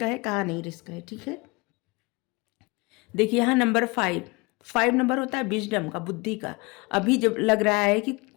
है कहाँ नहीं रिस्क है। ठीक है, देखिए यहाँ नंबर 5 नंबर होता है विजडम का, बुद्धि का। अभी जब लग रहा है कि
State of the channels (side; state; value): right; quieter; 26.3 dB